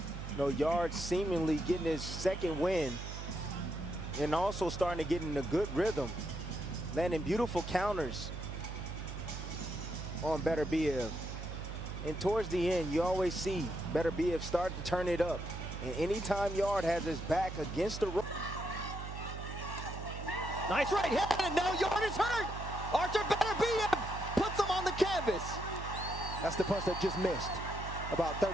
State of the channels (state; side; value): noise; right; hum, 7 dB below the sound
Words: You know, Yarde seemingly getting his second win and also starting to get in a good rhythm, landing beautiful counters on Beterbiev. And towards the end, you always see Beterbiev start to turn it up. And anytime Yarde has his back against the rope. Nice right hand, and now Yarde is hurt. Artur Beterbiev puts him on the canvas. That's the punch that just missed about